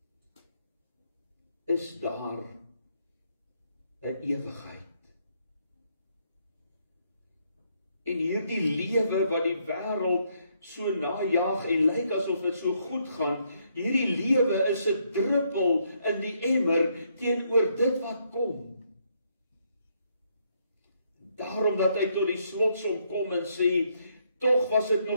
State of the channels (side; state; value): both; inverted; correlation -0.73